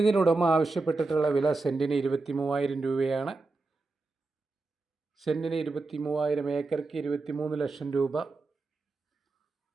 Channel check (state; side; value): quieter; left; 3.5 dB